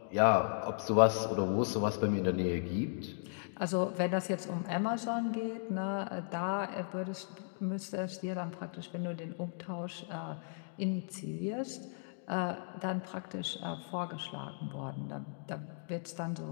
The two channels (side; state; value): right; silent; digital silence